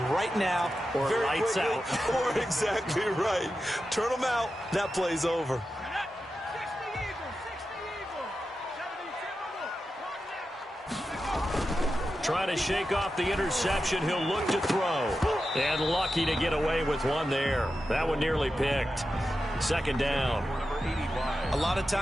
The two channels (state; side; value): normal; both; correlation 0.91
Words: right now. Or very lights quickly, out. Or exactly right. Turn them out. That play's over. Trying to shake off the interception. He'll look to throw. And lucky to get away with one there. That one nearly picked. Second down. A lot of